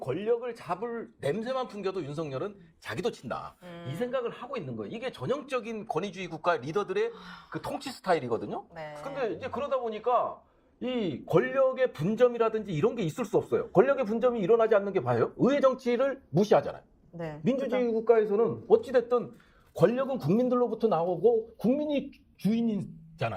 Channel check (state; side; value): identical; both; correlation 1.00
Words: 잡을 냄새만 풍겨도 윤석열은 자기도 친다. 이 생각을 하고 있는 거예요. 이게 전형적인 권위주의 국가 리더들의 그 통치 스타일이거든요. 네. 근데 이제 그러다 보니까 이 권력의 분점이라든지 이런 게 있을 수 없어요. 권력의 분점이 일어나지 않는 게 봐요. 의회 정치를 무시하잖아요. 네. 민주주의 국가에서는 어찌됐든 권력은 국민들로부터 나오고 국민이